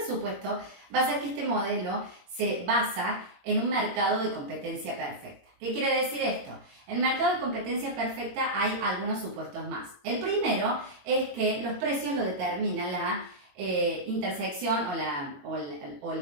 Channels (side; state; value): left; late; 22 ms